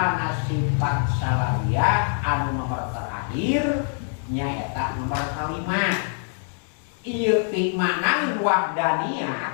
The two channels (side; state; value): right; silent; 62 dB below the other